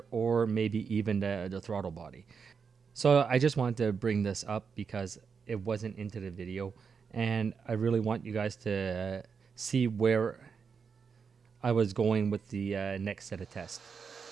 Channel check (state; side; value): quieter; left; 5.9 dB